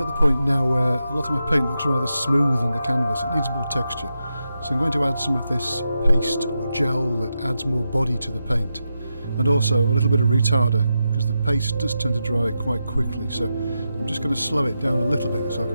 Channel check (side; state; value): both; inverted; correlation -0.88